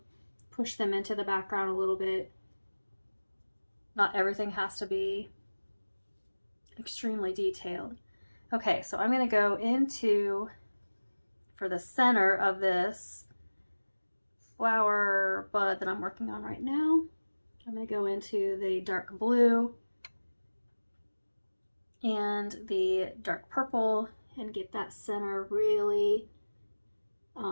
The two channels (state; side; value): inverted; both; correlation -1.00